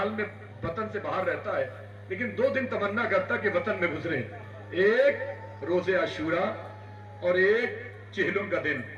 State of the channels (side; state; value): both; identical; correlation 1.00